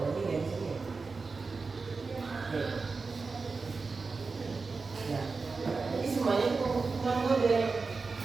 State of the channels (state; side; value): quieter; left; 4.3 dB